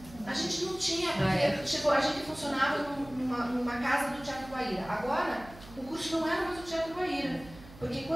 A gente não tinha, porque a gente funcionava numa casa do Teatro Guaíra. Agora, o curso não era mais do Teatro Guaíra. Porque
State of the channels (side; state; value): right; noise; hum, 18 dB below the sound